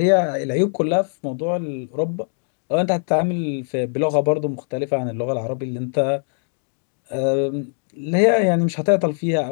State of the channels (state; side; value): silent; right; 62 dB below the other